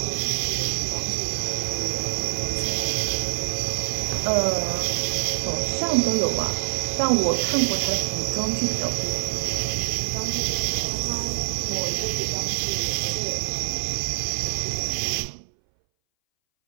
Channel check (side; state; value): left; silent; 60 dB below the other